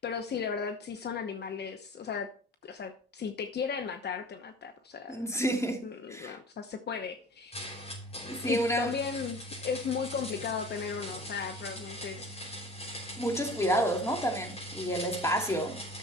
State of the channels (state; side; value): normal; both; correlation 0.42